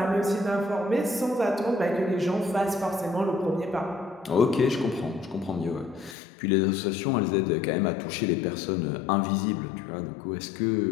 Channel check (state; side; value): drops out; right; at 6.2 s